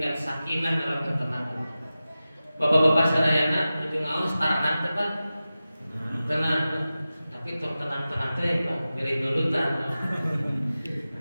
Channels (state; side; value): inverted; both; correlation -0.95